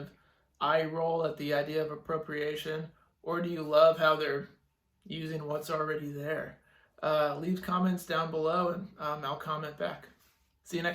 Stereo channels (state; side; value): identical; both; correlation 1.00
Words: eye roll at the idea of appropriation, or do you love how they're using what's already there? Leave comments down below and I'll comment back. See you